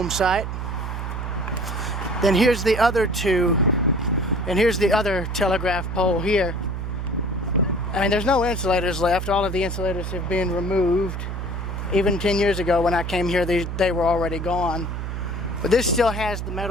site. Then here's the other two, and here's the other telegraph pole here. I mean, there's no insulators left. All of the insulators have been removed. Even 10 years ago when I came here, they were already gone. But this still has the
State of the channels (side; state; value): right; noise; hum, 4 dB below the sound